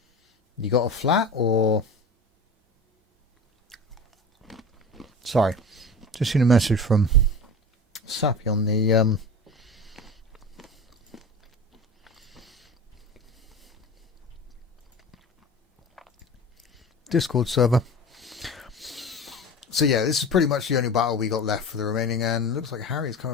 you got a flat, or... Sorry, just seen a message from Sappy on the Discord server. So yeah, this is pretty much the only battle we got left for the remaining, and looks like Harry's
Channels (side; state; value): both; normal; correlation 0.32